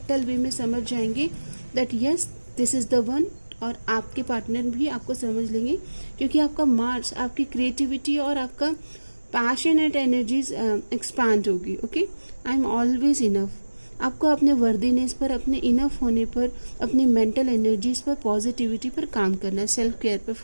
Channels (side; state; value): both; inverted; correlation -1.00